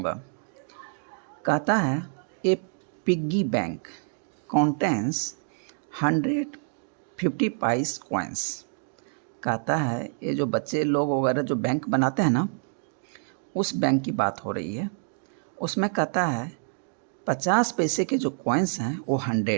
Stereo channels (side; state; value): left; silent; 55 dB below the other